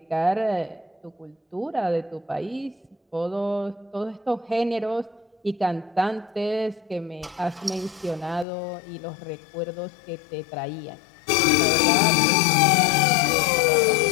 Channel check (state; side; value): drops out; right; at 8.5 s